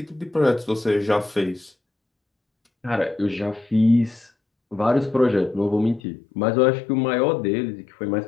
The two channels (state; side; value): drops out; right; at 6.0 s